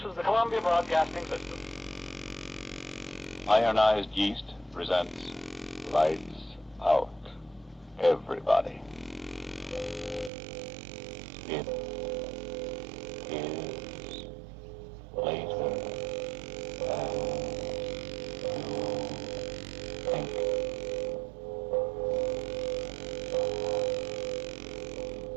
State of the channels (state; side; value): drops out; left; at 10.3 s